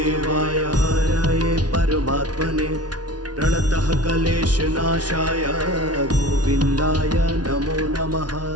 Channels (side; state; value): left; late; 0.69 ms